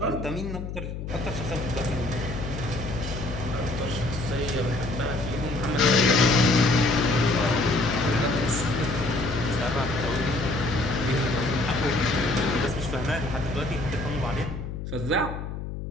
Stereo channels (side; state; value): left; noise; hum, 7 dB below the sound